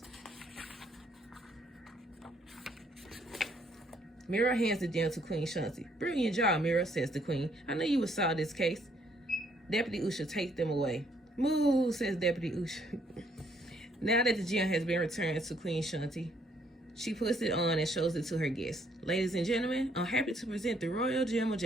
Mira hands the gem to Queen Shanti. Brilliant job, Mira, says the queen. I knew you would solve this case. Deputy Usha takes them away. Move, says Deputy Usha. Now that the gem has been returned to Queen Shanti, she puts it on and shows it to her guests. Ladies and gentlemen, I'm happy to present the royal gem of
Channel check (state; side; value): normal; both; correlation 0.68